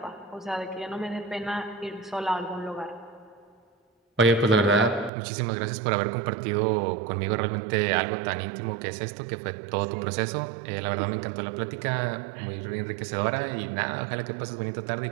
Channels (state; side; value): drops out; left; at 5.1 s